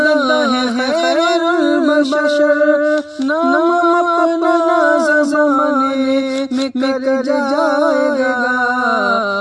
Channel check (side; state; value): both; identical; correlation 1.00